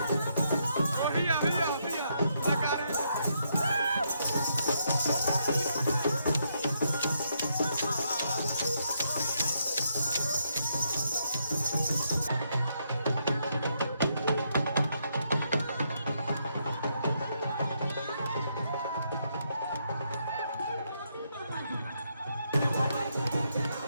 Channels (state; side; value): inverted; both; correlation -0.77